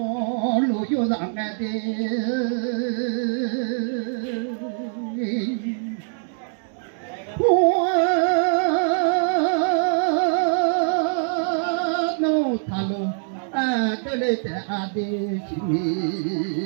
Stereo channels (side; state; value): left; silent; 63 dB below the other